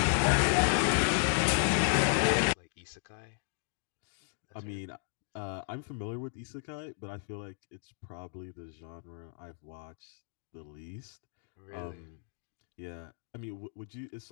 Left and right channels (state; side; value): silent; right; digital silence